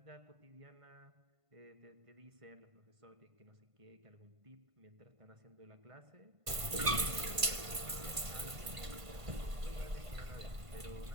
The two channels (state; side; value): late; left; 1.5 ms